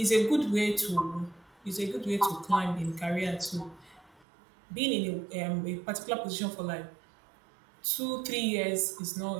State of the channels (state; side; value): drops out; left; at 4.2 s